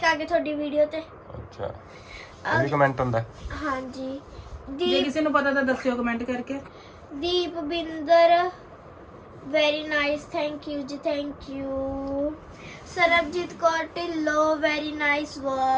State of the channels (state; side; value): identical; both; correlation 1.00